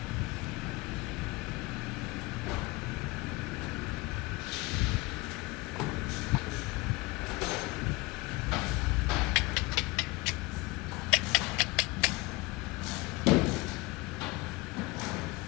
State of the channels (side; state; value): right; quieter; 23.3 dB